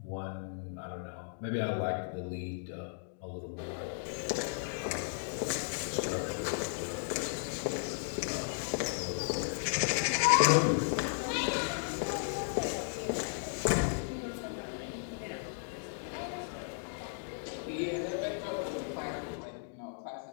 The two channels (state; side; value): silent; right; digital silence